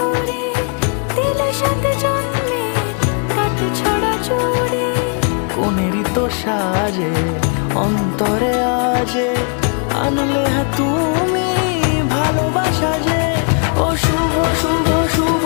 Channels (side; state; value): right; quieter; 39.9 dB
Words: দিলে সাথে জন্মের কাট ছড়া জুড়ে। কোনেরই তো সাজে অন্তরে আজে আনলে হ্যাঁ তুমি ভালোবাসা যে। ও শুভ শুভ শুভ